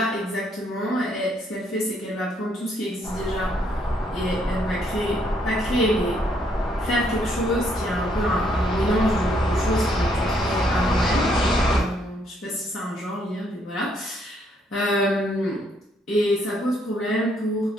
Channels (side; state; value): both; normal; correlation 0.71